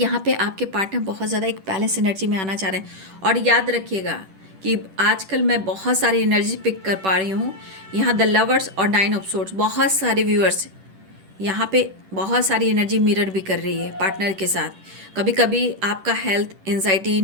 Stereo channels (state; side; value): late; left; 10 ms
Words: पे आपके पार्टनर बहुत ज़्यादा एक बैलेंस एनर्जी में आना चाह रहे हैं। और याद रखिएगा कि आजकल मैं बहुत सारी एनर्जी पिक कर पा रही हूँ। यहाँ द लवर्स और 9 ऑफ सोर्ड्स, बहुत सारे व्यूअर्स यहाँ पे बहुत सारी एनर्जी मिरर भी कर रही है पार्टनर के साथ। कभी कभी आपका हेल्थ, एंजाइटी,